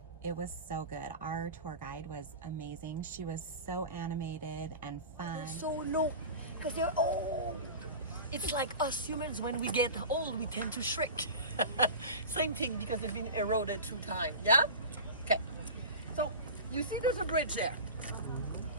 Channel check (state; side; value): inverted; both; correlation -0.32